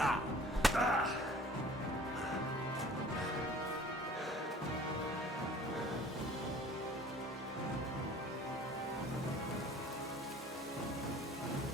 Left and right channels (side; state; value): both; normal; correlation 0.49